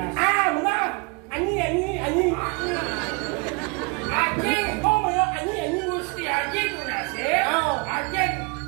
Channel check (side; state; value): left; quieter; 30.3 dB